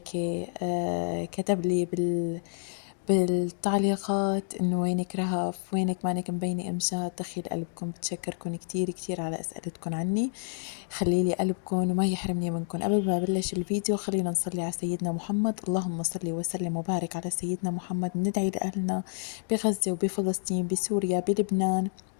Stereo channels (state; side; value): silent; right; digital silence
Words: كتب لي بالتعليقات إنه وينك رهف، وينك مانك مبينة إمشات. دخيل قلبكم، بتشكركم كتير كتير على أسئلتكم عني. خليلي قلبكم وما يحرمني منكم. قبل ما بلش الفيديو خلينا نصلي على سيدنا محمد. اللهم صل وسلم وبارك على سيدنا محمد. ندعي لأهلنا بغزة وبفلسطين، بسوريا، بلبنان،